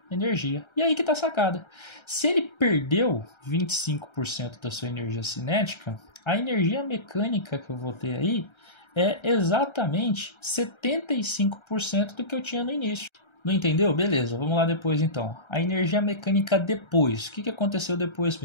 energia. E aí que está a sacada. Se ele perdeu 25% da sua energia cinética, a energia mecânica que eu vou ter aí é exatamente 75% do que eu tinha no início. Não entendeu? Beleza, vamos lá depois então. A energia mecânica depois. O que aconteceu depois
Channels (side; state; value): right; late; 1.3 ms